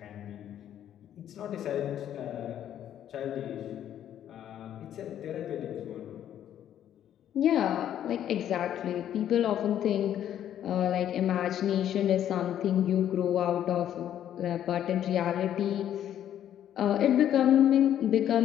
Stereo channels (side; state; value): right; quieter; 10.7 dB